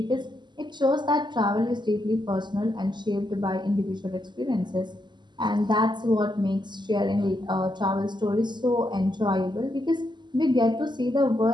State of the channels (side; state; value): left; late; 0.21 ms